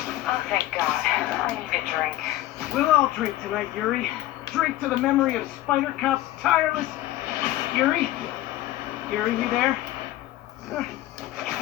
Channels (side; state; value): right; quieter; 15.2 dB